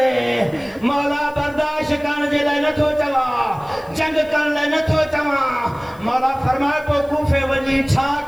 मौला बर्दाश्त करण जे लाइ नथो चवां जंग करण लाइ नथो चवां मौला फरमायो पोइ कूफे वञी छा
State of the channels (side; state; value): left; noise; hiss, 27 dB below the sound